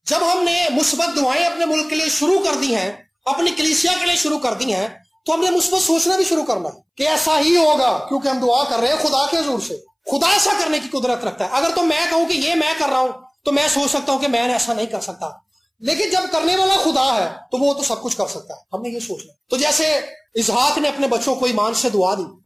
جب ہم نے مثبت دعائیں اپنے ملک کے لیے شروع کر دی ہیں، اپنی کلیسیا کے لیے شروع کر دی ہیں، تو ہم نے مثبت سوچنا بھی شروع کرنا ہے کہ ایسا ہی ہوگا، کیونکہ ہم دعا کر رہے ہیں خدا کے حضور سے۔ خدا ایسا کرنے کی قدرت رکھتا ہے۔ اگر تو میں کہوں کہ یہ میں کر رہا ہوں تو میں سوچ سکتا ہوں کہ میں ایسا نہیں کر سکتا، لیکن جب کرنے والا خدا ہے تو وہ تو سب کچھ کر سکتا ہے، ہم نے یہ سوچنا۔ تو جیسے اسحاق نے اپنے بچوں کو ایمان سے دعا دی،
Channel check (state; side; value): identical; both; correlation 1.00